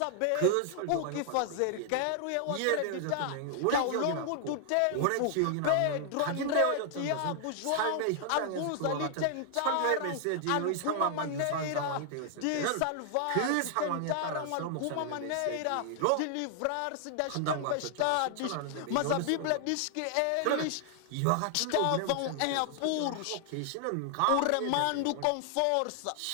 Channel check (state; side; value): different; both; correlation 0.00